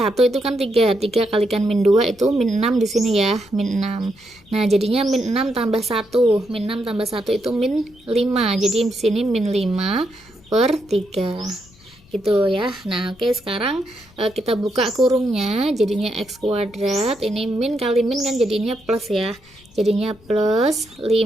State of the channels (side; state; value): left; noise; rumble, 27 dB below the sound